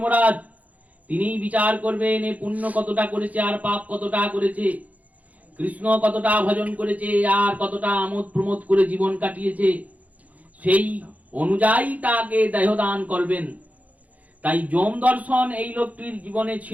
তিনিই বিচার করবেন এ পুণ্য কতটা করেছে আর পাপ কতটা করেছে, কৃষ্ণ কতটা ভজন করেছে আর কতটা আমোদ প্রমোদ করে জীবন কাটিয়েছে, সেই অনুযায়ী তাকে দেহদান করবেন। তাই যম দর্শন এই লোকটির জীবনে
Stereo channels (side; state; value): left; late; 0.073 ms